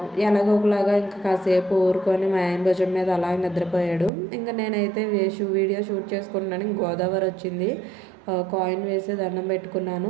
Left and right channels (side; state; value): left; drops out; at 4.1 s